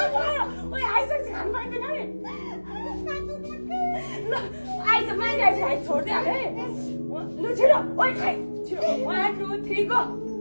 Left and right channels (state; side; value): inverted; both; correlation -1.00